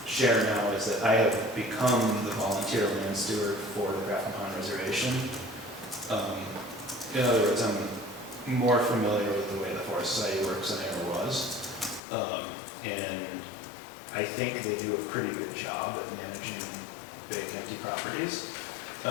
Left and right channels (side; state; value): right; drops out; at 12.0 s